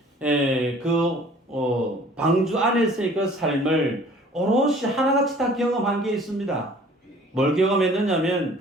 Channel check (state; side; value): normal; both; correlation 0.52